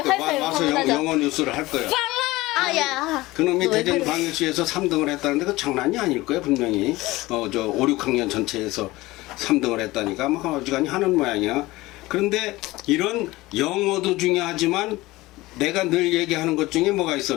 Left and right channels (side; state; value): right; quieter; 19.4 dB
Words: 거야. 활활 와서 화나자. 영어 뉴스를 할 거예요. 아야. 그놈이 너 왜 그래? 대전광역시에서 3등을 했다는데 그 장난이 아닐 거예요 분명히. 저 5, 6학년 전체에서 3등을 했다니까 뭐 어지간히 하는 모양이야. 그런데 이런 영어도 중요하지만 내가 늘 얘기하는 것 중에 뭐가 있어.